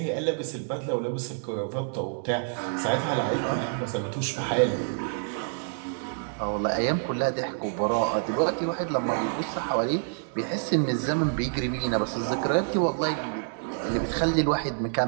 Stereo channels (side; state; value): left; silent; digital silence